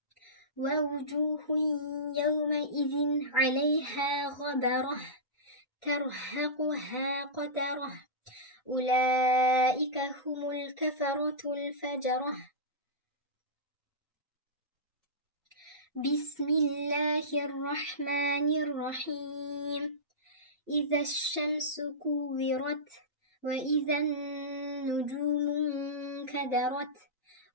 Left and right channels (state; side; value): normal; both; correlation -0.17